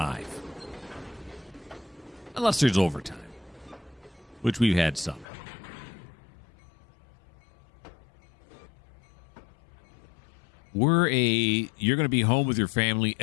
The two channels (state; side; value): drops out; right; at 5.2 s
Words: Unless there's overtime, which we've had some. You're going to be home with your family